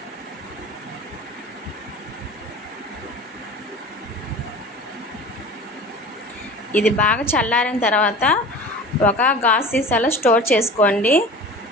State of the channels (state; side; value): normal; both; correlation 0.37